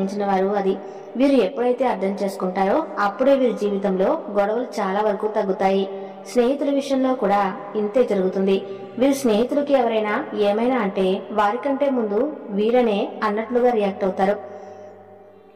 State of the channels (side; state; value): both; identical; correlation 1.00